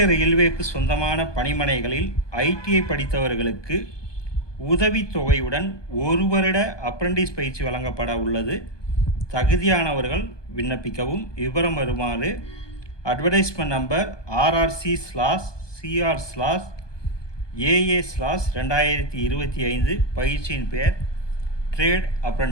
ரயில்வேக்கு சொந்தமான பணிமனைகளில் ஐடிஐ படித்தவர்களுக்கு உதவித்தொகையுடன் 1 வருட அப்ரண்டிஸ் பயிற்சி வழங்கப்பட உள்ளது. தகுதியானவர்கள் விண்ணப்பிக்கவும். விவரம் வருமாறு அட்வர்டைஸ்மெண்ட் நம்பர் RRC/CR/AA/2025. பயிற்சியின் பெயர் ட்ரேட்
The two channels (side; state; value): right; late; 1.2 ms